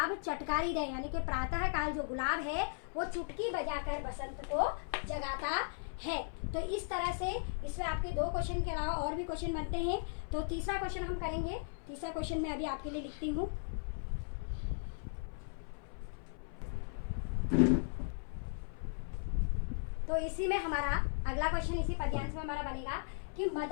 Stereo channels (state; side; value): silent; right; 53 dB below the other